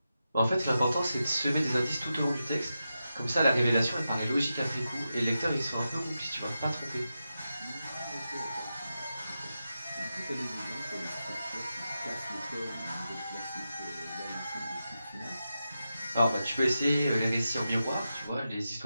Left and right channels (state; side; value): inverted; both; correlation -0.90